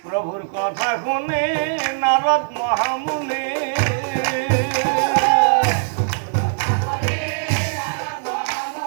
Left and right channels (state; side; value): silent; left; digital silence